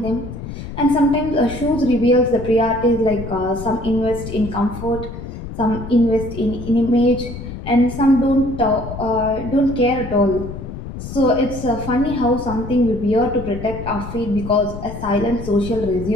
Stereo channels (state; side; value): noise; left; rumble, 10 dB below the sound